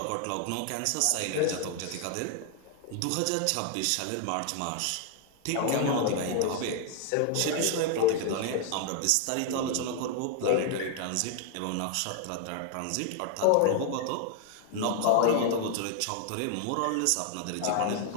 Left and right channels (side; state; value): both; different; correlation 0.00